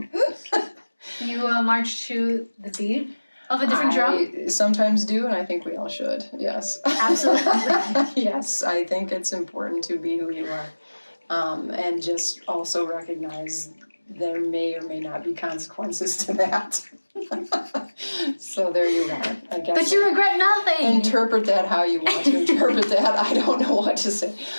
You march to the beat of a different drum? I sometimes do, and I think we all should, yes. Absolutely. Yes, I think it's important to be who you are, and just also recognize there may or may not be consequences to that. So there you are, I guess. But you regret nothing. Interpret that how you want to interpret that. I don't know what to say.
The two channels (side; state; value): both; inverted; correlation -1.00